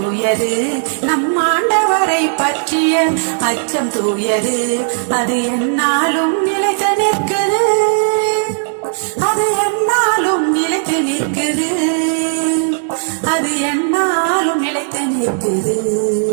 நம் ஆண்டவரை பற்றிய அச்சம் தூயது. அது எந்நாளும் நிலைத்து நிற்குது, அது எந்நாளும் நிலைத்து நிற்குது, அது எந்நாளும் நிலைத்து நிற்குது.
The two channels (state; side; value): silent; left; digital silence